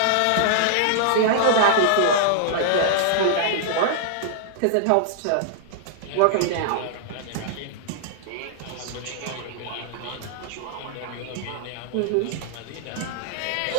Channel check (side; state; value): both; different; correlation -0.01